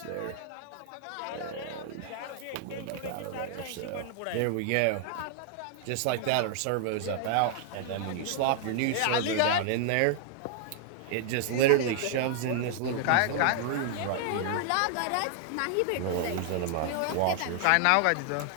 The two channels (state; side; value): different; both; correlation 0.00